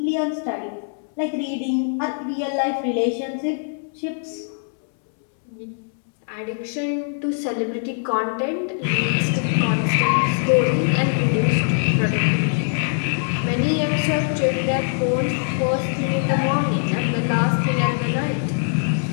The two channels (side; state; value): right; silent; 64 dB below the other